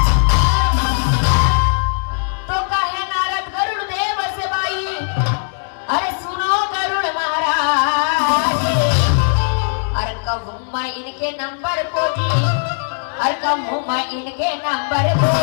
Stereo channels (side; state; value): right; silent; digital silence